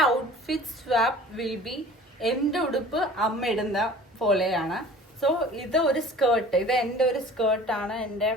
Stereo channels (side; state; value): both; normal; correlation 0.45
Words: outfit swap will be എൻ്റെ ഉടുപ്പ് അമ്മ ഇടുന്ന പോലെയാണ്. സോ ഇത് ഒരു സ്കേർട്ട്, ഇത് എൻ്റെ ഒരു സ്കേർട്ടാണ്. എൻ്റെ